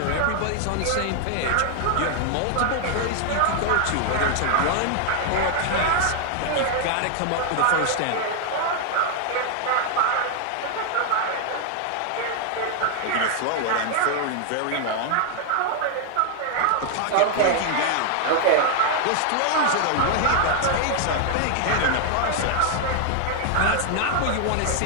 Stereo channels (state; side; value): different; both; correlation 0.00